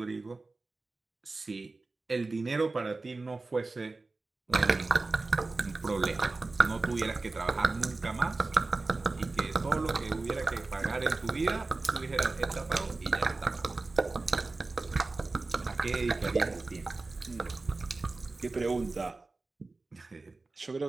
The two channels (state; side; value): quieter; left; 3.5 dB